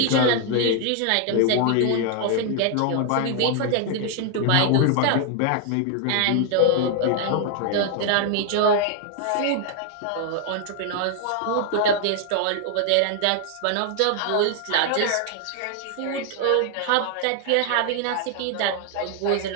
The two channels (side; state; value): both; different; correlation 0.00